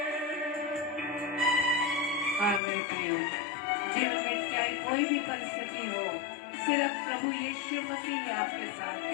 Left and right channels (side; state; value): right; drops out; at 2.6 s